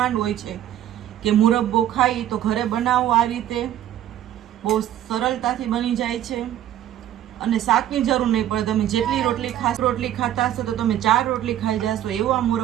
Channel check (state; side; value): quieter; left; 11.8 dB